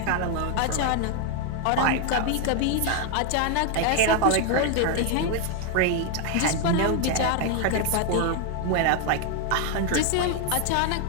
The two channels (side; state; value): both; different; correlation 0.01